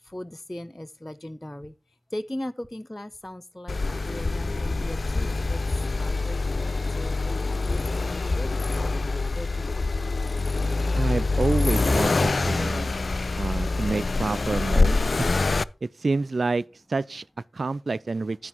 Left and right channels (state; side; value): normal; both; correlation 0.96